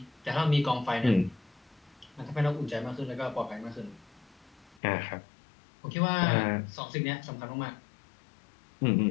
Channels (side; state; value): right; drops out; at 4.8 s